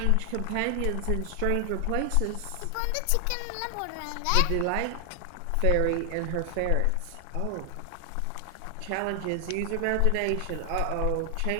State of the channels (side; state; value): both; different; correlation 0.00